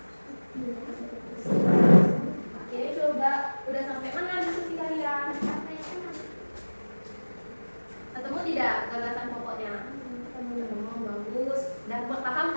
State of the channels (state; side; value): inverted; both; correlation -1.00